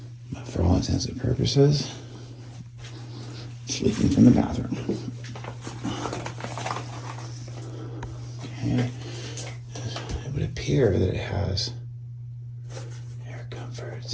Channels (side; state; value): both; identical; correlation 1.00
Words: But for all intents and purposes, it's leaking from the bathroom. Okay, it would appear that it has air comfort.